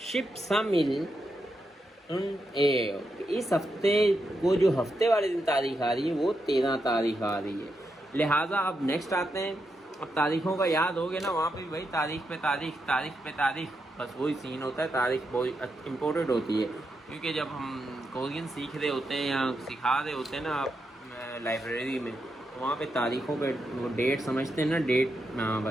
इस हफ्ते को जो हफ्ते वाले दिन तारीख आ रही है वो 13 तारीख आ रही है। लिहाजा अब नेक्स्ट आते हैं। अब तारीखों का याद हो गया ना, वहाँ पे भाई तारीख पे तारीख, बस वही सीन होता है। तारीख बहुत इम्पोर्टेंट होती है, क्योंकि जब हम कोरियन सीख रहे होते हैं या सिखा रहे होते हैं ना आप लाइब्रेरी में, तो वहाँ पे तारीखों पे वो डेट समझते हैं ना,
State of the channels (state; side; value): normal; both; correlation 0.84